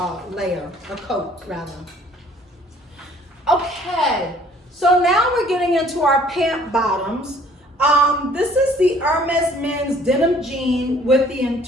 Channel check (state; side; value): normal; both; correlation 0.57